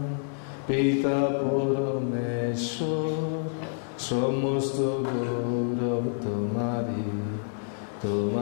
পিতা পরমেশ্বর, সমস্ত গৌরব তোমারি,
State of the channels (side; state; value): right; silent; digital silence